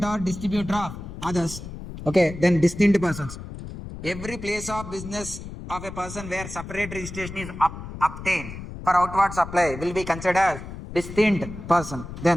or distributor of others. Okay, then distinct persons. Every place of business of a person where separate registration is obtained for outward supply will be considered as distinct person.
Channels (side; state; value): left; noise; rumble, 11 dB below the sound